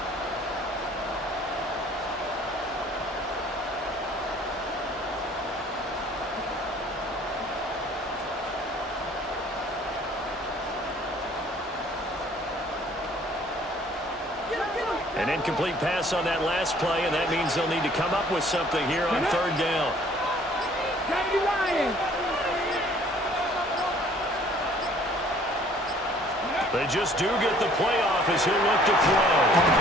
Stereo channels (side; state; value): both; normal; correlation 0.56